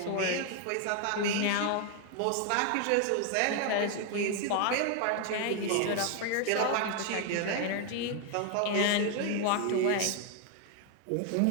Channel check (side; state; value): both; different; correlation 0.01